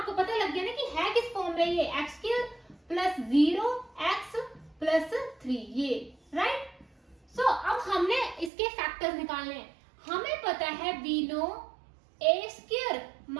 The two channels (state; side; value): drops out; left; at 8.5 s